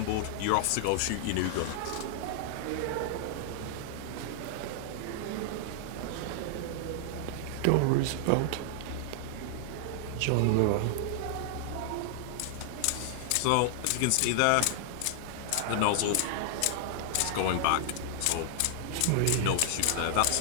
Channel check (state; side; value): different; both; correlation 0.00